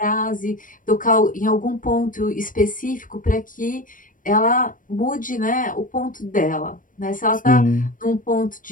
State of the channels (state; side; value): late; right; 0.39 ms